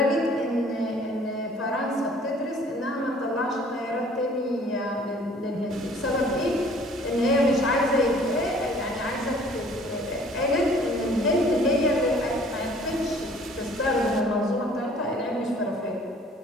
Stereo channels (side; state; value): both; normal; correlation 0.54